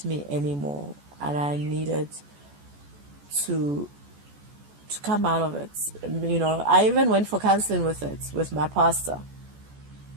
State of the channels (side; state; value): left; late; 14 ms